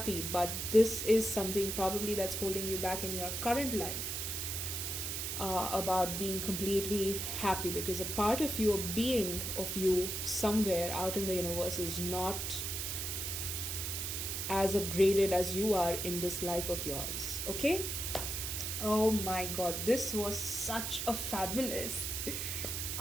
but this is something probably that's holding you back in your current life, about being completely happy, because a part of you, a being of you somewhere out in the universe, is not as upgraded as you are in this life of yours. Okay? Oh my god, this was such a fabulous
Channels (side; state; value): right; noise; hiss, 3 dB below the sound